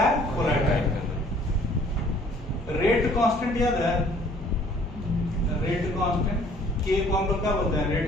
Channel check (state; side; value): normal; both; correlation 0.57